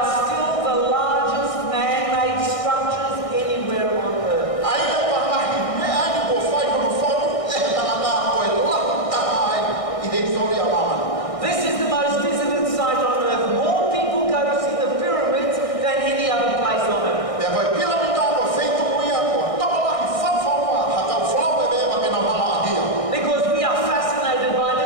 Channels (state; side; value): late; right; 1.6 ms